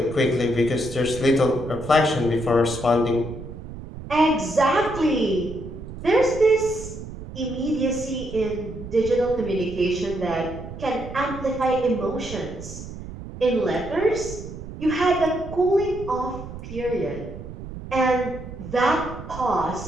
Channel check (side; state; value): right; noise; rumble, 11 dB below the sound